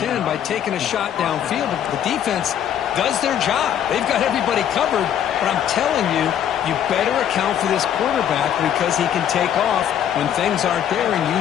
by taking a shot downfield. But the defense does their job. They've got everybody covered. But I'm telling you, you better account for this quarterback because he can take off when things aren't there and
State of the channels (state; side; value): quieter; right; 9.9 dB